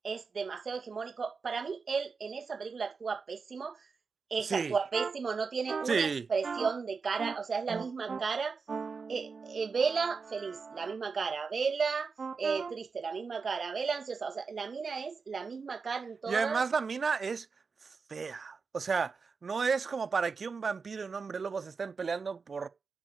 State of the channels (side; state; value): left; quieter; 5.0 dB